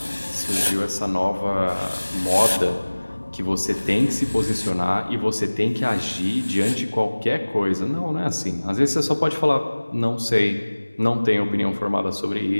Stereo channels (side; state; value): both; inverted; correlation -1.00